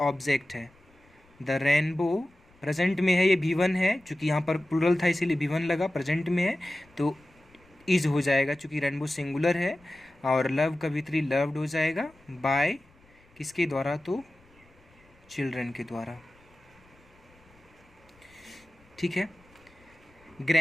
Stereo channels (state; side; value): noise; left; rumble, 30 dB below the sound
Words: ऑब्जेक्ट है। द रेनबो प्रेजेंट में है, ये B1 है, चूँकि यहाँ पर प्लूरल था इसीलिए B1 लगा। प्रेजेंट में है तो इज हो जाएगा, चूँकि रेनबो सिंगुलर है। और लव का V3 लव्ड हो जाएगा। बाय किसके द्वारा? तो चिल्ड्रन के द्वारा। ठीक है।